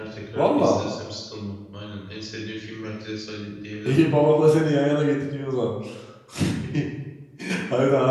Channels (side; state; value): both; identical; correlation 1.00